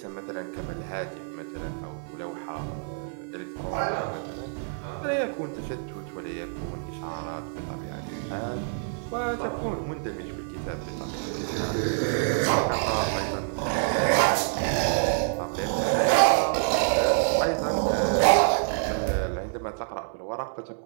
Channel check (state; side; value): silent; left; 60 dB below the other